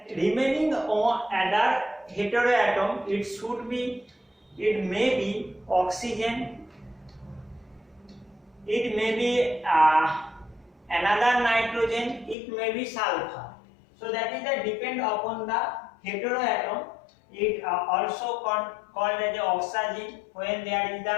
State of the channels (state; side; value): drops out; right; at 12.4 s